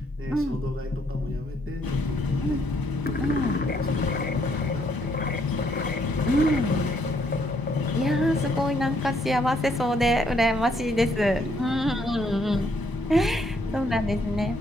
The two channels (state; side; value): normal; both; correlation 0.70